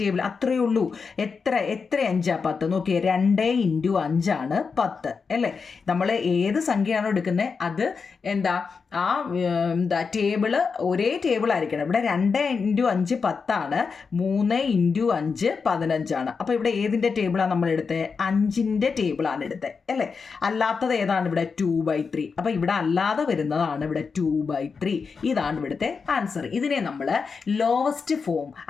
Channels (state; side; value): quieter; right; 5.2 dB